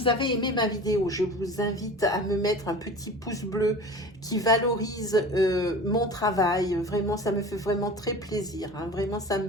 avez aimé ma vidéo, je vous invite à me mettre un petit pouce bleu qui valorise mon travail. Vraiment, ça me fait vraiment très plaisir. Hein. Vraiment, ça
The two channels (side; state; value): both; normal; correlation 0.37